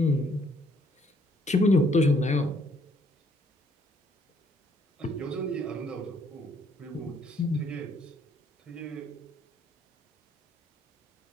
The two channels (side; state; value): both; normal; correlation 0.66